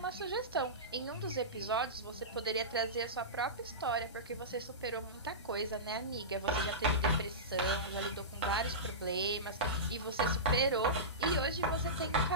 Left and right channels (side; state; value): both; normal; correlation -0.18